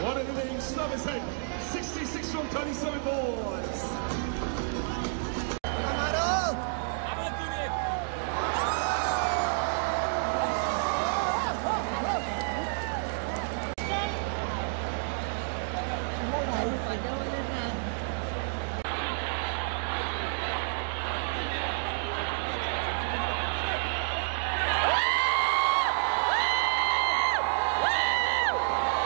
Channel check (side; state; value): left; silent; digital silence